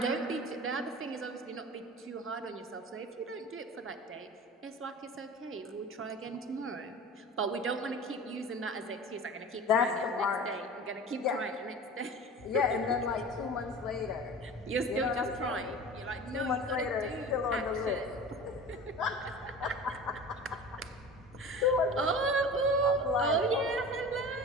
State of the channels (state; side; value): normal; both; correlation 0.36